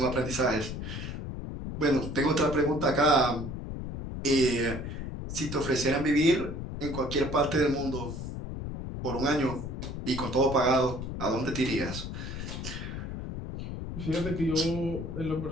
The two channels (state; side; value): noise; left; rumble, 6 dB below the sound